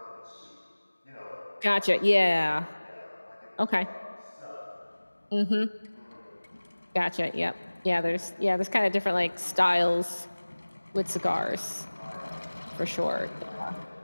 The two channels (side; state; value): both; inverted; correlation -1.00